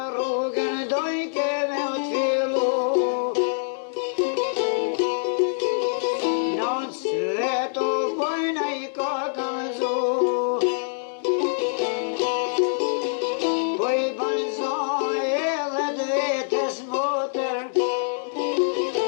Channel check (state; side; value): silent; right; digital silence